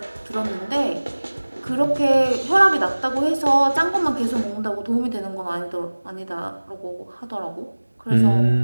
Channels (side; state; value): both; inverted; correlation -1.00